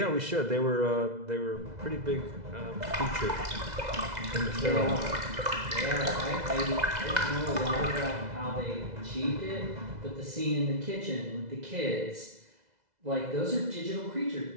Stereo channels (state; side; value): late; left; 2.0 ms